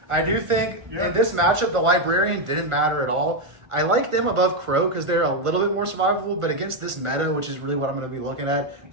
I do think in this matchup, the Librarian didn't matter at all. I like them above Crow because they're a little bit more survivable, but against this meta, which is really what I'm going to be looking at,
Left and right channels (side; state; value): left; late; 1.4 ms